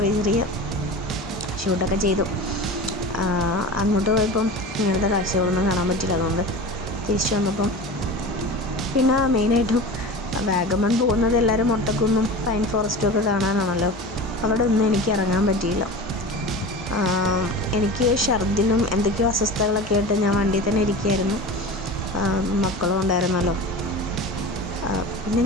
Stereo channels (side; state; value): both; normal; correlation 0.32